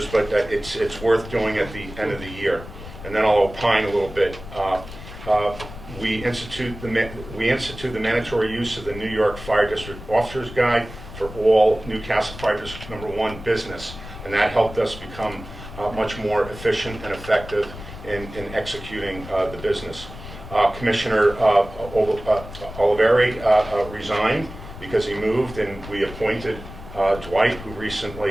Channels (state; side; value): noise; left; rumble, 13 dB below the sound